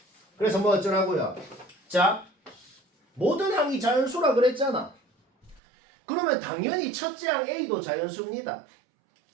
그래서 뭐 어쩌라고요? 자 모든 항이 자연수라 그랬잖아. 그러면 당연히 첫째 항 A도 자연수입니다.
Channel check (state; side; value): drops out; left; at 5.6 s